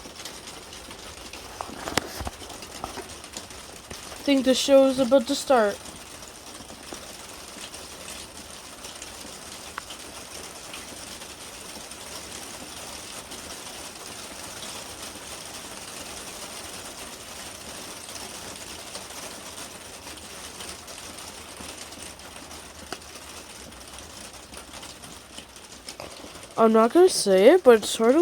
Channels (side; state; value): both; identical; correlation 1.00